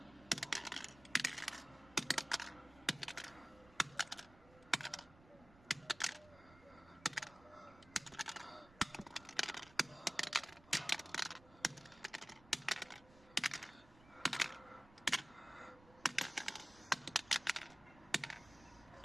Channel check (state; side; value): noise; right; rumble, 24 dB below the sound